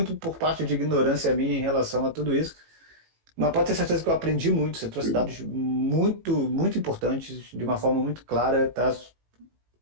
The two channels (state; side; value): late; left; 18 ms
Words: por parte de ignorância minha em relação a tudo isso. Mas pode ter certeza que eu aprendi muito. Você trouxe dados muito, muito importantes, de uma forma muito clara, tá?